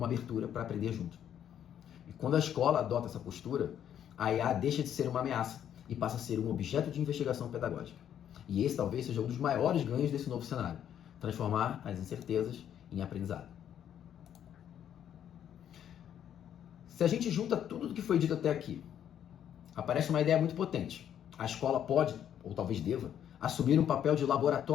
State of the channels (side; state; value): right; quieter; 9.8 dB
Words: abertura para aprender junto. E quando a escola adota essa postura, a IA deixa de ser uma ameaça e passa a ser um objeto de investigação pedagógica. E esse talvez seja um dos maiores ganhos desse novo cenário: transformar as incertezas em aprendizado. Se a gente junta tudo o que foi dito até aqui, aparece uma ideia muito potente. A escola pode, ou talvez deva, assumir um papel de